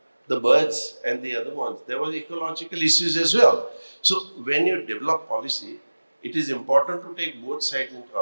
the birds and the other ones, there were ecological issues as well. So when you develop policy, it is important to take both sides into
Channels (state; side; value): inverted; both; correlation -1.00